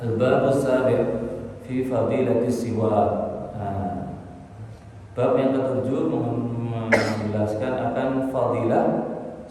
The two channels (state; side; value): identical; both; correlation 1.00